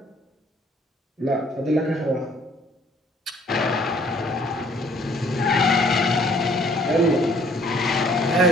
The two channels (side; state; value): both; normal; correlation 0.60